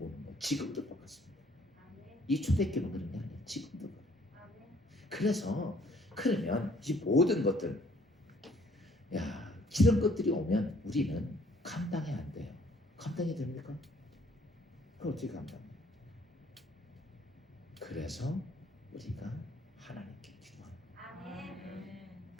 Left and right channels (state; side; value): normal; both; correlation 0.62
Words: 거 지금도 똑같습니다. 이 초대교회는 그런 게 아니에요. 지금도 그래요. 그래서 그러면 이 모든 것들 이런 것들이 오면 우리는 감당이 안 돼요. 감당이 됩니까? 그걸 어떻게 감당해요? 그래서 우리가 하나님께 기도합니다. 아멘.